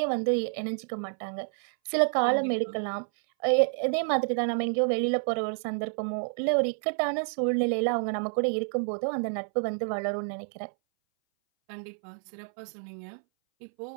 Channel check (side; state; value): left; silent; 59 dB below the other